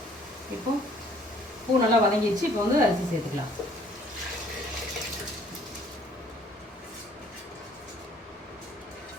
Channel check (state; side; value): normal; both; correlation 0.59